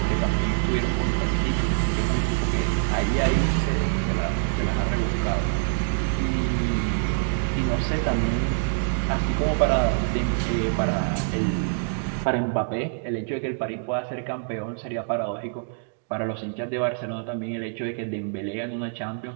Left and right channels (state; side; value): silent; left; digital silence